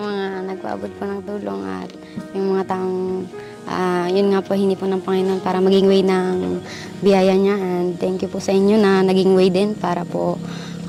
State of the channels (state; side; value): identical; both; correlation 1.00